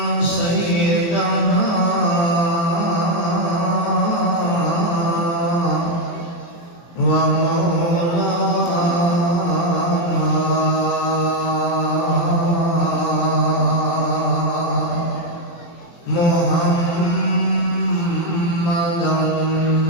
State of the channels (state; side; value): late; right; 23 ms